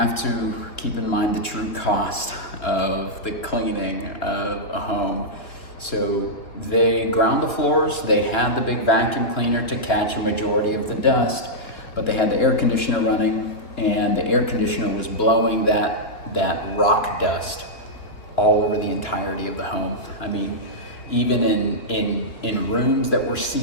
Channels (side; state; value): right; late; 3.2 ms